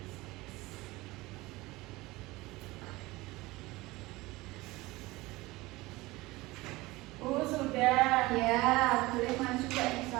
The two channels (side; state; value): left; quieter; 20.6 dB